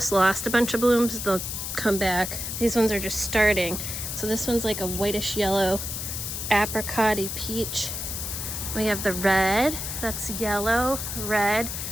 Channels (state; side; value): noise; left; hiss, 5 dB below the sound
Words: lost a bunch of blooms. They'll come back. These ones are just starting. So this one's like a whitish yellow apricot-y peach. We have the red, that's yellow, red,